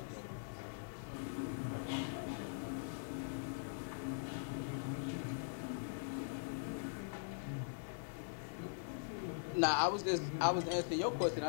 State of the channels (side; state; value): right; silent; digital silence